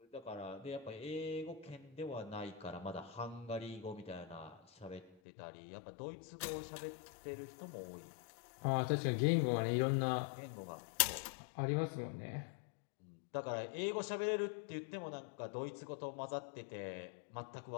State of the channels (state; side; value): drops out; right; at 5.1 s